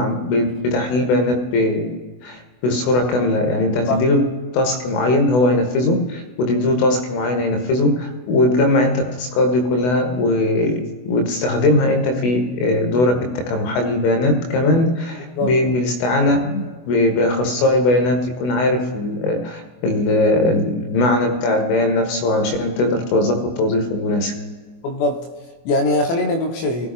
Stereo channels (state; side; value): late; right; 24 ms